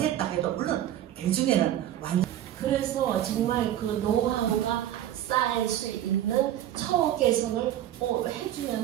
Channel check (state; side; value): quieter; left; 12.1 dB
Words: 해도 물론 대중에는 완전 그래서 정말 그 노하우가 쌓일 수 있는 처우 개선을